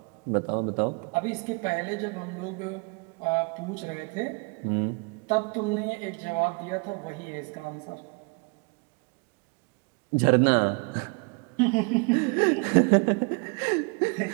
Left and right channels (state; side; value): quieter; left; 33.1 dB